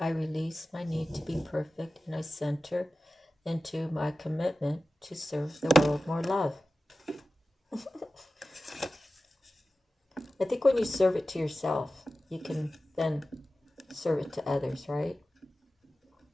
release my need to be perfect and I center into my commitment to serve the world more love. I think when you serve it to yourself, you can then serve it to others, right?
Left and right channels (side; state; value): both; normal; correlation 0.95